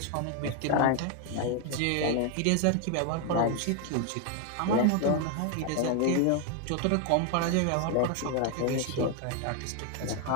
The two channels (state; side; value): different; both; correlation 0.01